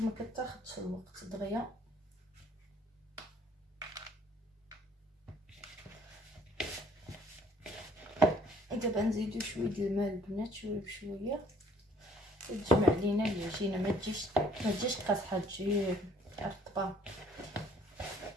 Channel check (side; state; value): both; normal; correlation 0.59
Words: ما كتاخذش الوقت دغيا. دابا نزيدو شويه د الماء البنات، شويه بشويه، تجمع لينا العجينه. ما تجيش قاصحه، تجي رطبه.